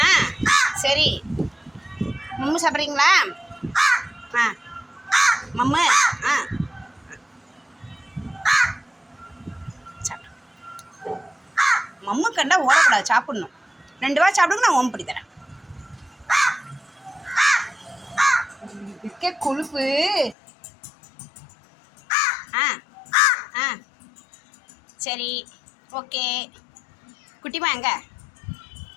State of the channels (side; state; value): right; drops out; at 20.4 s